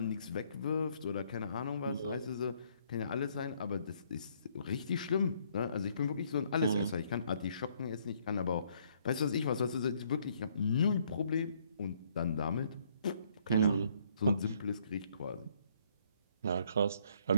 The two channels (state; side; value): inverted; both; correlation -0.67